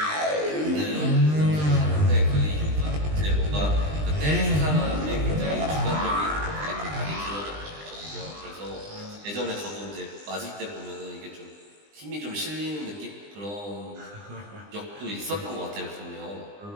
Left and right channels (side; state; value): left; late; 20 ms